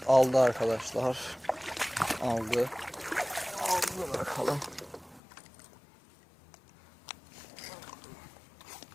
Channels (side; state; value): right; drops out; at 5.2 s